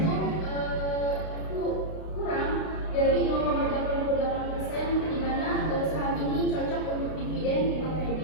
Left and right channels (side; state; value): right; late; 32 ms